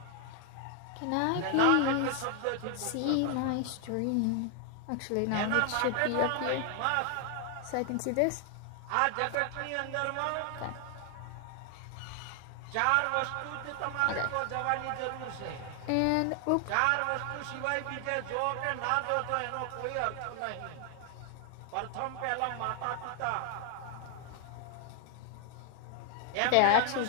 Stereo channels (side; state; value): both; different; correlation 0.00